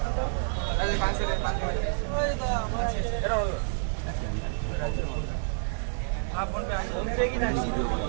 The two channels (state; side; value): silent; left; digital silence